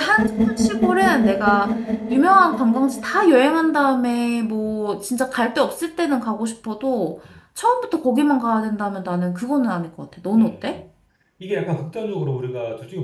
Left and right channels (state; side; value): identical; both; correlation 1.00